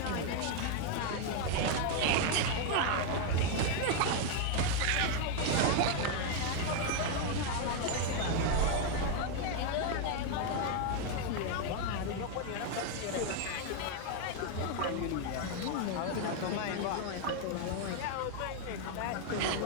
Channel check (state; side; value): different; both; correlation 0.01